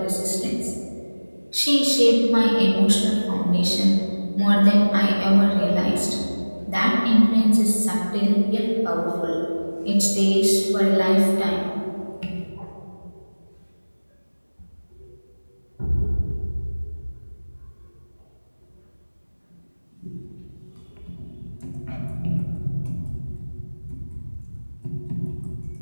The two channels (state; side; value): inverted; both; correlation -1.00